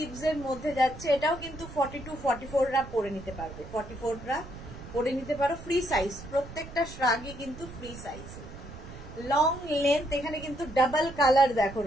এর মধ্যে যাচ্ছে। এটাও কিন্তু 42, 44 রা পরে নিতে পারবে, 44 রা পরে নিতে পারো, ফ্রি সাইজ। প্রত্যেকটা শ্রাগই কিন্তু ফ্রি সাইজ, লং লেন্থ। এখানে কিন্তু ডাবল কালার দেখো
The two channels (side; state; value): right; noise; rumble, 14 dB below the sound